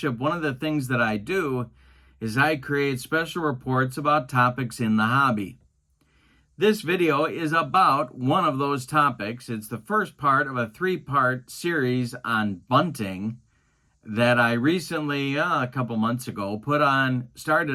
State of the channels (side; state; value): both; identical; correlation 1.00